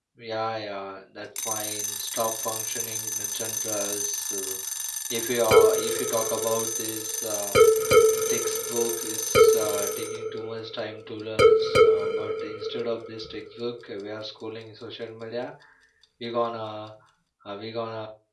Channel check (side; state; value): both; identical; correlation 1.00